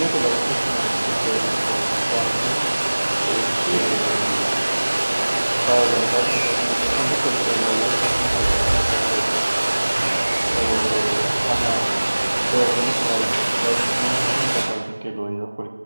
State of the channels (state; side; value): inverted; both; correlation -1.00